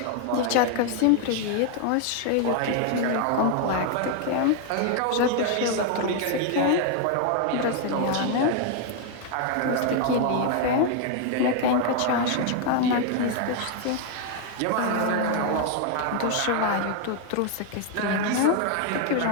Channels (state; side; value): different; both; correlation 0.00